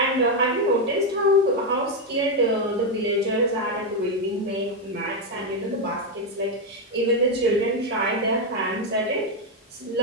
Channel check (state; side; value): normal; both; correlation 0.04